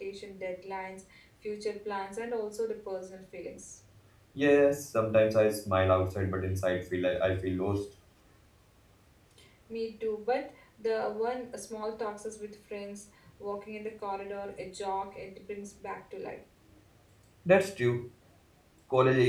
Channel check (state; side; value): identical; both; correlation 1.00